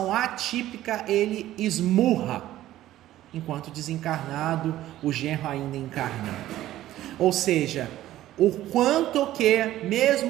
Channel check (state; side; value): quieter; left; 14.1 dB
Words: atípica ele esmurra, enquanto desencarnado, o genro ainda encarnado. Ou seja, o quanto que,